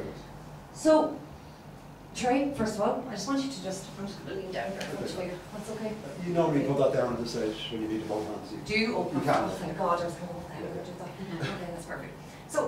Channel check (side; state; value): both; identical; correlation 1.00